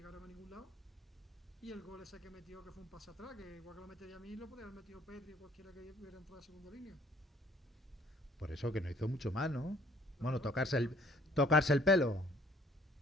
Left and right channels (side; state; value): both; normal; correlation 0.59